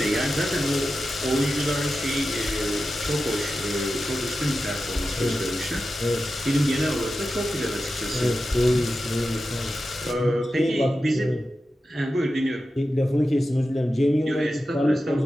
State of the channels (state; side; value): normal; both; correlation 0.92